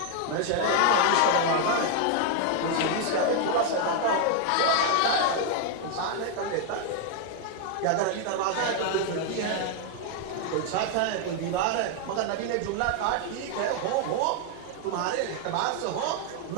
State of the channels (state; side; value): different; both; correlation 0.00